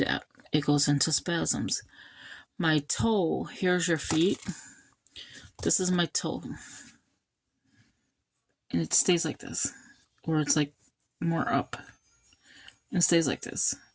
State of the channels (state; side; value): identical; both; correlation 1.00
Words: It goes into spasms. My toe, here's your feet. This is my toe. And it stays like this. Or it's like more up. And it stays like this.